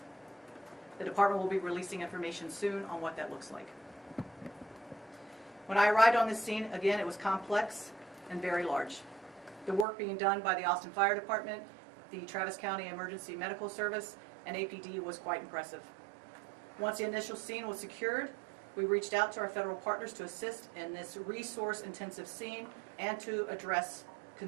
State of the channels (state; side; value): drops out; left; at 9.9 s